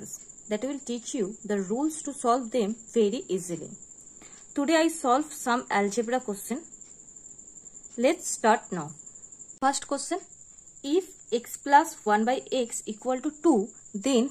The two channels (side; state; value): both; identical; correlation 1.00